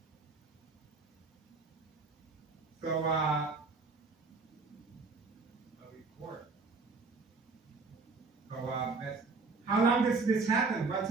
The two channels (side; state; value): left; quieter; 4.1 dB